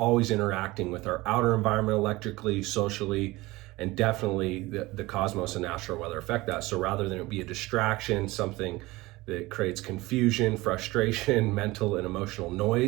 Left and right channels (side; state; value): left; quieter; 20.5 dB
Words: interacting with our outer environment electrically, socially, and definitely the cosmos and astral weather affect that. So rather than it be a distraction, something that creates confusion, frustration, mental and emotional